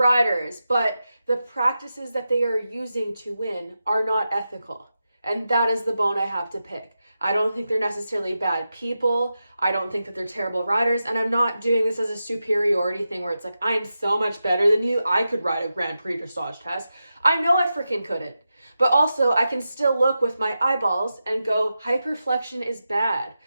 but the practices that they are using to win are not ethical. And that is the bone I have to pick. I don't think they're necessarily bad people. I don't think that they're terrible riders. And I'm not doing this as a superiority thing where it's like, I am so much better than you. I could ride a Grand Prix dressage test. I know I freaking couldn't. But also I can still look with my eyeballs and go, hyperflexion is bad.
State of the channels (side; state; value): both; inverted; correlation -0.90